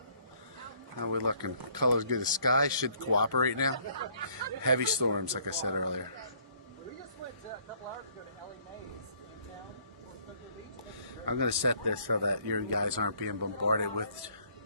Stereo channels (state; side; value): inverted; both; correlation -0.62